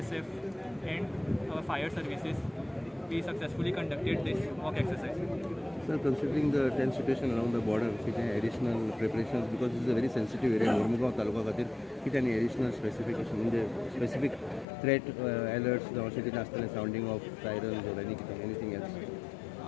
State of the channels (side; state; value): right; drops out; at 14.7 s